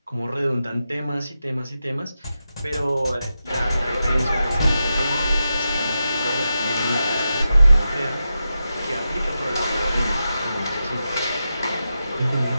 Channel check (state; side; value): inverted; both; correlation -0.89